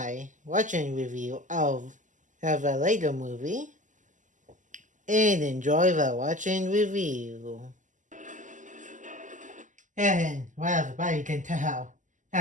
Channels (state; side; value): late; left; 0.37 ms